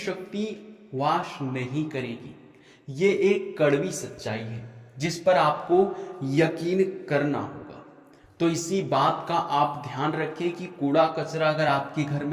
वास नहीं करेगी। ये एक कड़वी सच्चाई है जिस पर आपको यकीन करना होगा। तो इसी बात का आप ध्यान रखें कि कूड़ा कचरा अगर आपके घर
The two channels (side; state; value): both; identical; correlation 1.00